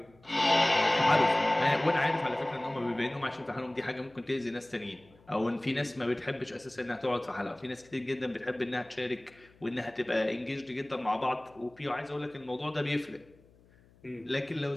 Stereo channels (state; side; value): noise; left; hum, 28 dB below the sound